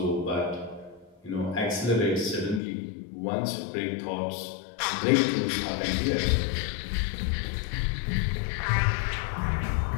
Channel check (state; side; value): drops out; right; at 2.6 s